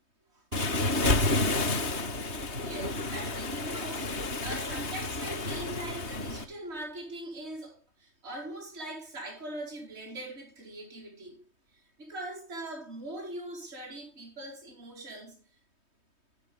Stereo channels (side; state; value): left; late; 3.2 ms